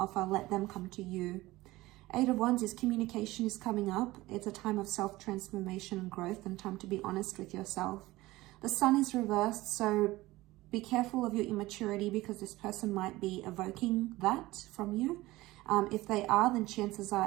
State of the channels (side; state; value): left; quieter; 18.7 dB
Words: Let them come to you. Eight of Wands is communication is coming up. It's a time of self-transformation and growth and time to be honest with yourself. The Sun is reversed, so be careful of your immaturity because this person might be evoking that from you. If they are, then chances